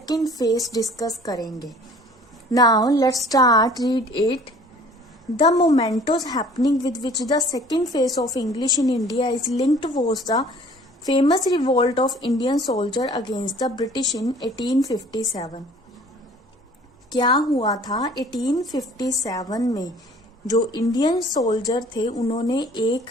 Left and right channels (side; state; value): both; normal; correlation 0.52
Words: phase discuss करेंगे. Now let's start read it. The mementos happening with which the second phase of English in India is linked was the famous revolt of Indian soldier against the British in 1857. क्या हुआ था 1857 में? जो Indian soldier थे उन्होंने एक